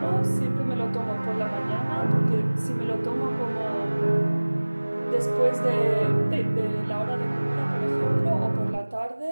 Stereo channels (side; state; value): both; inverted; correlation -1.00